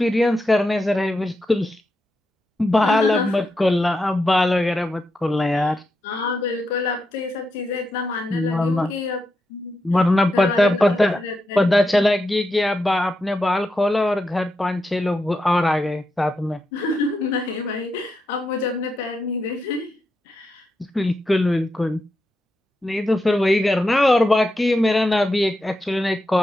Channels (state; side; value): normal; both; correlation 0.86